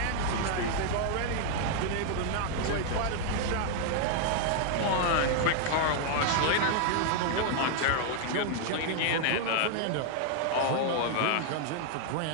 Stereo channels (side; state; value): both; different; correlation 0.00